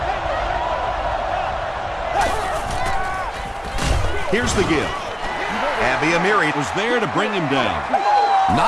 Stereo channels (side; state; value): both; identical; correlation 1.00